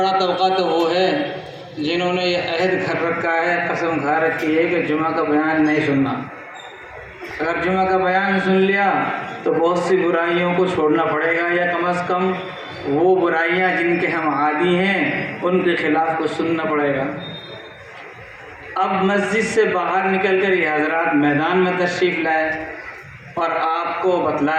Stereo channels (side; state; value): both; identical; correlation 1.00